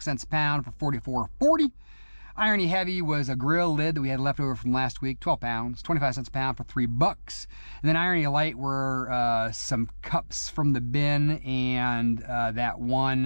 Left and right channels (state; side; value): inverted; both; correlation -1.00